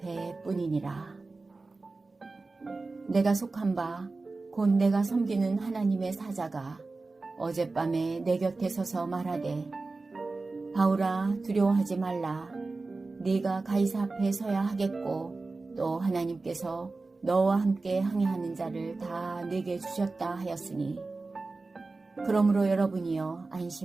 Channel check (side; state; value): left; quieter; 3.6 dB